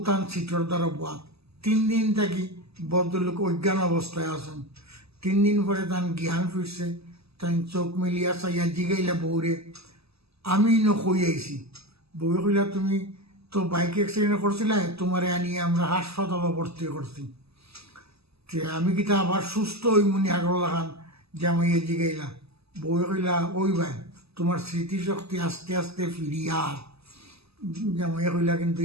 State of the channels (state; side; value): late; left; 0.78 ms